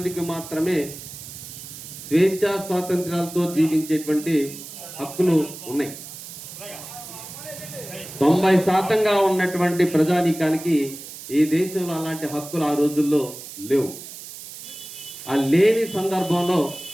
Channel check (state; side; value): noise; right; hiss, 13 dB below the sound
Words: మాత్రమే స్వేచ్ఛా స్వాతంత్ర్యాలతో జీవించేటువంటి హక్కులు ఉన్నాయి. 90% ఉన్నటువంటి ప్రజానీకానికి ఈ దేశంలో అలాంటి హక్కులు ఆ రోజుల్లో లేవు. ఆ లేని సందర్భంలో